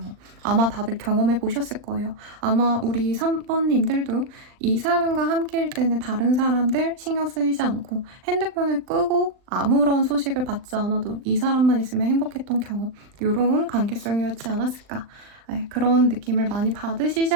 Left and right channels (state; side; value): late; left; 39 ms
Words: 아마 다들 경험해 보셨을 거예요. 아마 우리 3번님들도 이 사람과 함께일 때는 다른 사람들 신경 쓰이지 않고 핸드폰을 끄고 아무런 소식을 받지 않아도 이 사람만 있으면 행복했던 경험. 이런 관계성이었지 않았을까. 네, 그런 느낌을 많이 받으시지